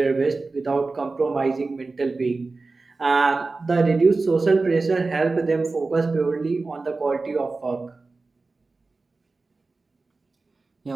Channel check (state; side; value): quieter; left; 3.7 dB